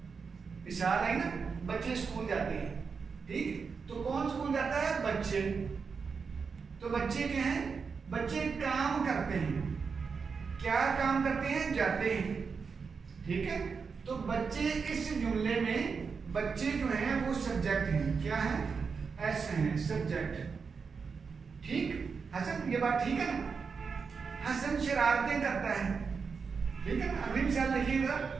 मिसाल है ना, बच्चे स्कूल जाते हैं। ठीक, तो कौन स्कूल जाता है? बच्चे। तो बच्चे क्या हैं? बच्चे काम करते हैं। क्या काम करते हैं? जाते हैं। ठीक है, तो बच्चे इस जुमले में बच्चे जो हैं वो सब्जेक्ट हैं। क्या है? एस हैं, सब्जेक्ट। ठीक, हसन, ये बात ठीक है ना? हसन शरारतें करता है। ठीक है ना? अगली मिसाल देखिएगा।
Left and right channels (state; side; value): quieter; left; 5.4 dB